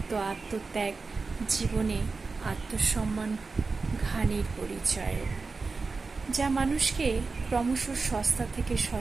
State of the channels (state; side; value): quieter; left; 4.2 dB